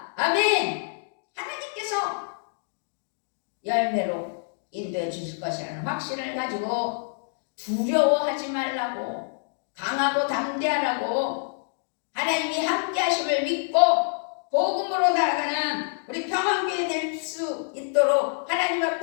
아멘. 하나님께서 열매로 인도해 주실 것이라는 확신을 가지고 두려워하지 말라고, 강하고 담대하라고, 하나님이 함께 하심을 믿고 복음으로 나아가는 우리 평안교회 될 수 있도록 하나님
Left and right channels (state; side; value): silent; right; digital silence